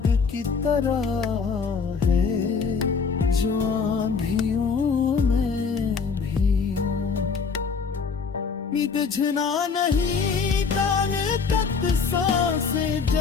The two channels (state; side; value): quieter; right; 5.4 dB